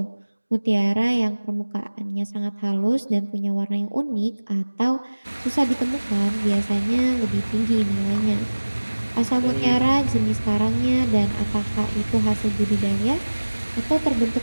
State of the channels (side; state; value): both; inverted; correlation -1.00